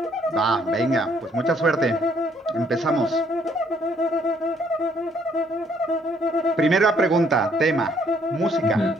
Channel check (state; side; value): normal; both; correlation 0.66